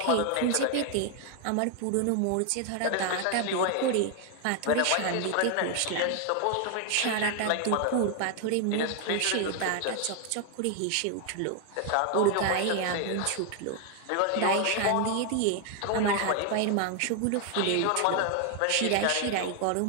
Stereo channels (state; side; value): different; both; correlation 0.01